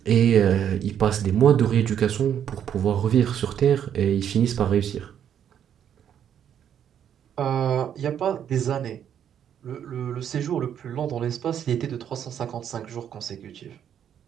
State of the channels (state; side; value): quieter; left; 9.2 dB